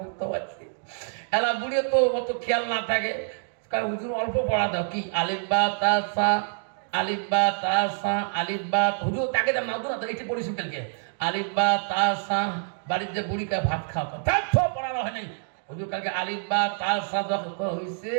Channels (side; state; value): left; silent; digital silence